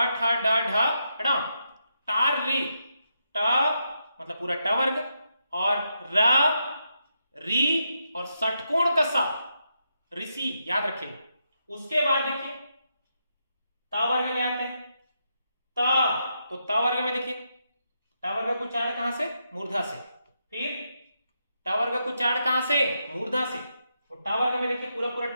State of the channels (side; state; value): both; inverted; correlation -0.83